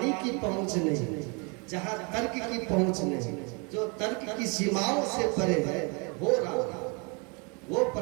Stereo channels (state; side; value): quieter; left; 32.3 dB